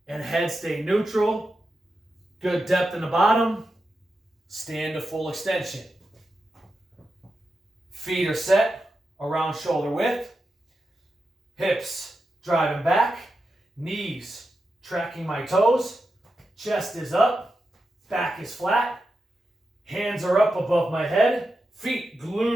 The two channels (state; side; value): normal; both; correlation 0.89